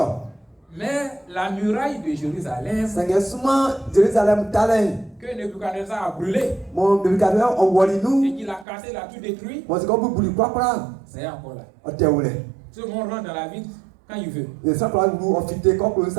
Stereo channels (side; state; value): left; drops out; at 8.7 s